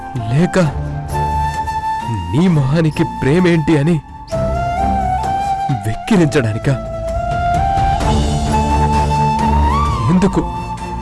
లేక నీ మొహానికి ప్రేమేంటి అని వెక్కిరించడానిక?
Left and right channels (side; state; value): both; identical; correlation 1.00